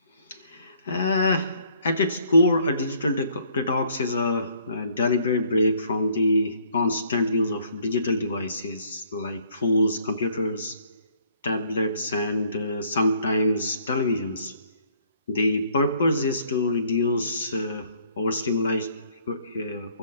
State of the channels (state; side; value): inverted; both; correlation -0.63